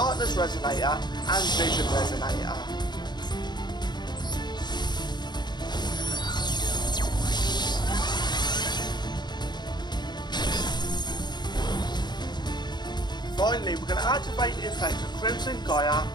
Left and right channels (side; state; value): right; late; 0.21 ms